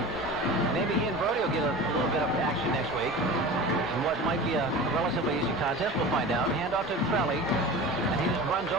Maybe he and Brody will get a little bit of action next week. And what might be a relatively easy contest, we'll find out. Hand off to Trelli, and he just runs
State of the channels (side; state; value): both; normal; correlation 0.34